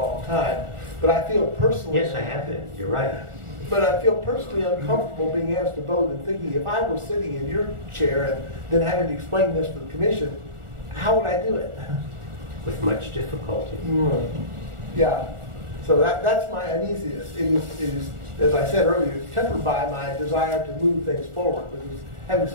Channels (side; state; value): left; late; 1.4 ms